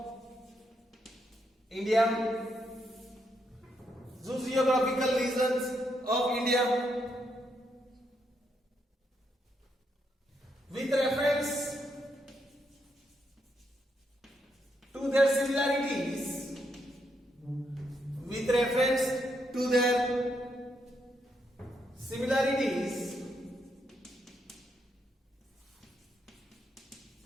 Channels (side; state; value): both; normal; correlation 0.79